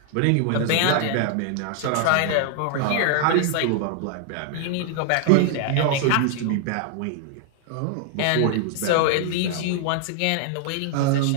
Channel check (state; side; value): different; both; correlation 0.00